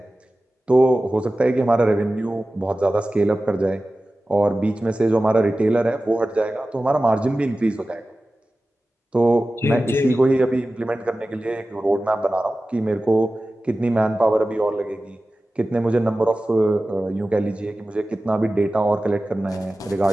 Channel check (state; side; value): normal; both; correlation 0.96